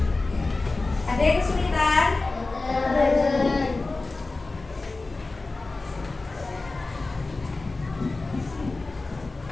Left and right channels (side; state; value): right; quieter; 3.4 dB